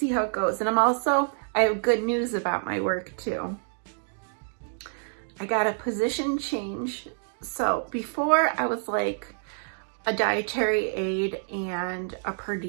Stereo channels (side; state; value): left; silent; 60 dB below the other